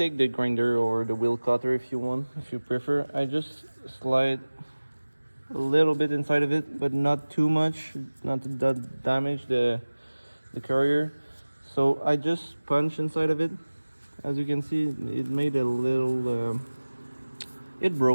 the grinder or the wheel cutter if you want, if you prefer. I just slide a little bit inside of it, but not too much, not to damage the carrier. So I just punch inside of it, as you can see, it made a little it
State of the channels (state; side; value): inverted; both; correlation -1.00